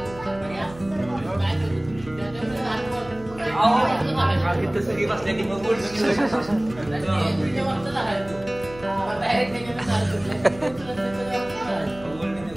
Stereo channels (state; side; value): noise; right; hum, 18 dB below the sound